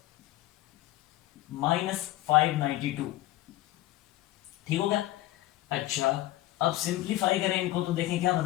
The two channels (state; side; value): quieter; right; 16.0 dB